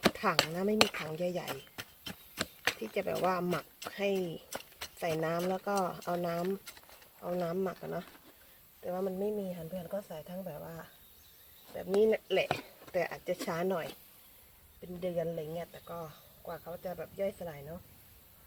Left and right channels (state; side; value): identical; both; correlation 1.00